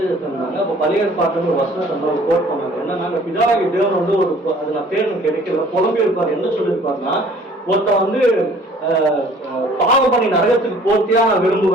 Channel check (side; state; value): both; normal; correlation 0.53